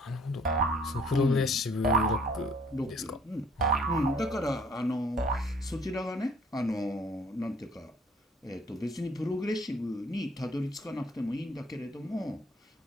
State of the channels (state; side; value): normal; both; correlation 0.58